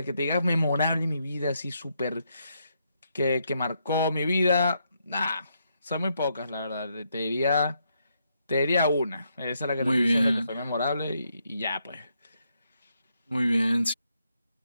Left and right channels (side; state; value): both; inverted; correlation -0.78